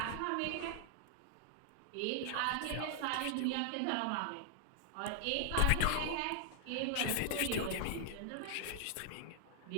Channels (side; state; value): both; different; correlation 0.00